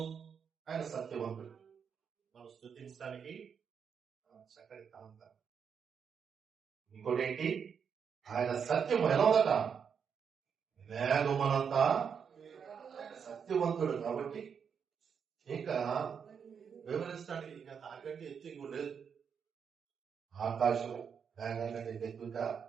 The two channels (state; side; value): quieter; left; 6.9 dB